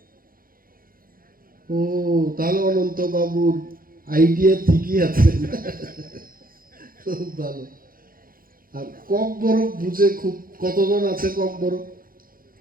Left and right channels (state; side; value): late; left; 0.42 ms